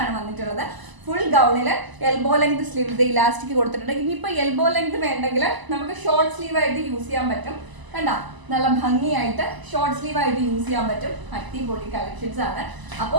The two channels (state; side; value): late; left; 1.0 ms